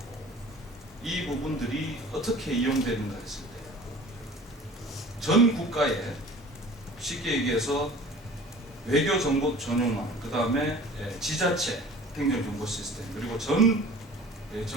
이 부분들이 어떻게 이용되는가 했을 때 전 국가에 쉽게 얘기해서 외교정보 전용망, 그 다음에 지자체 행정정보 시스템, 그리고 전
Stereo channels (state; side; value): normal; both; correlation 0.44